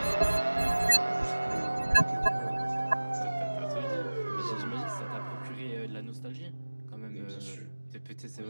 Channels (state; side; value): inverted; both; correlation -1.00